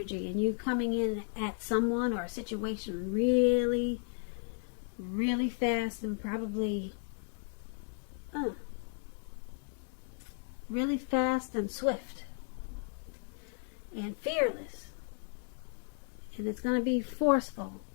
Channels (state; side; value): silent; right; 55 dB below the other